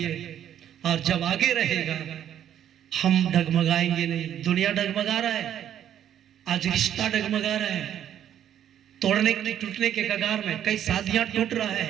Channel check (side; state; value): left; quieter; 10.3 dB